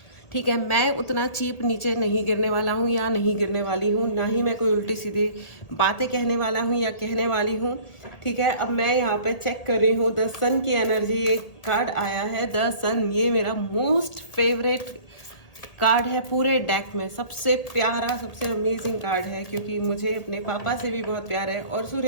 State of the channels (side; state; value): right; late; 1.8 ms